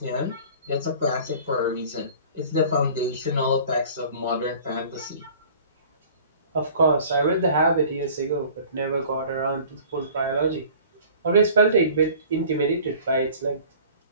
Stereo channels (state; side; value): inverted; both; correlation -0.46